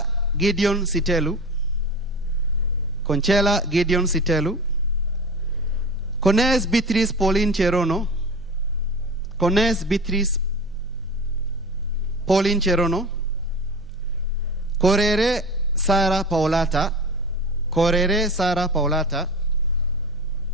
Gideon Sitelu, Conchela Gideon Sitelu, Cones Beatrice Pauline Cherono, Cones Beatrice Pauline Cherono, Correre Sara Paolata, Correre Sara Paolata,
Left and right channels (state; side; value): normal; both; correlation 0.33